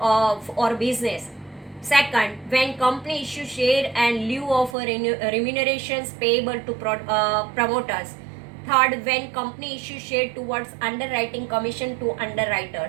business. Second, when company issue share and lieu of remunerations payable to promoters. Third, when company issue share towards underwriting commission to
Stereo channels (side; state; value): left; drops out; at 4.8 s